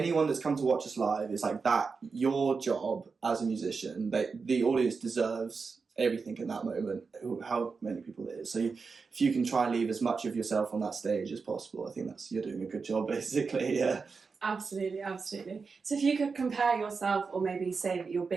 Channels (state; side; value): quieter; left; 4.9 dB